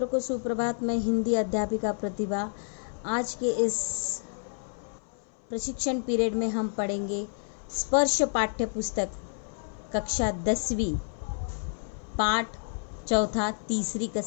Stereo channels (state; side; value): silent; right; 58 dB below the other